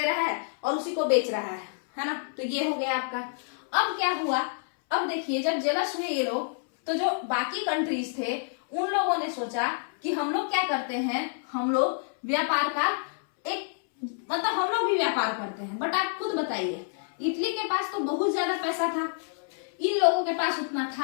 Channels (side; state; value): right; silent; 59 dB below the other